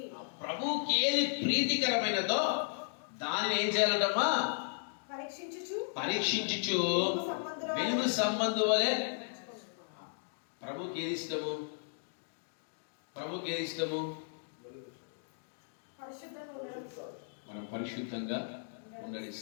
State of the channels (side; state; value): right; silent; digital silence